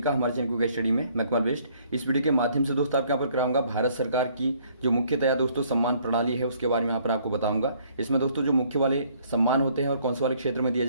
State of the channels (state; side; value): inverted; both; correlation -0.63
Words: हमारे चैनल क्विक स्टडी में। मैं कमल बेस्ट। इस वीडियो के माध्यम से दोस्तों आपके यहाँ पर कराऊंगा भारत सरकार की जो मुख्यतया दोस्तों सम्मान प्रणाली है उसके बारे में यहाँ पर आपको बताऊंगा। इसमें दोस्तों जो मुख्य वाले सम्मान होते हैं और कौन से वाले क्षेत्र में दिए